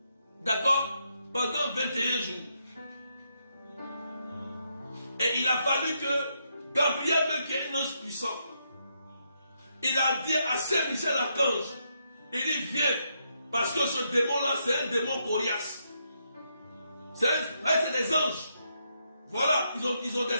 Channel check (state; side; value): inverted; both; correlation -0.79